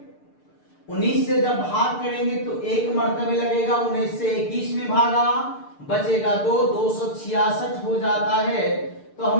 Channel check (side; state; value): right; late; 6.7 ms